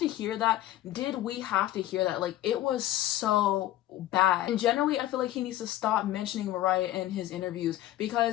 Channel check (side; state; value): right; quieter; 14.4 dB